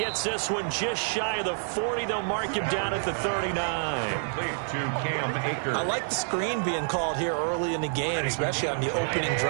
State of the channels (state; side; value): silent; left; 59 dB below the other